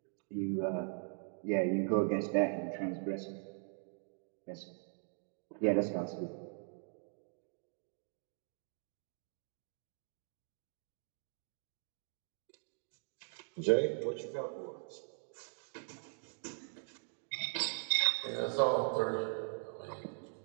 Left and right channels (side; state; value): left; silent; 51 dB below the other